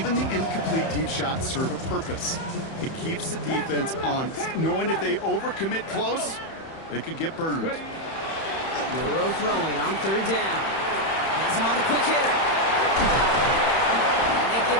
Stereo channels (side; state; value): right; late; 31 ms